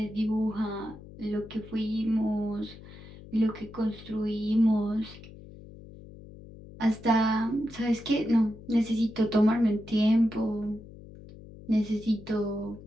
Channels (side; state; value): left; noise; hum, 17 dB below the sound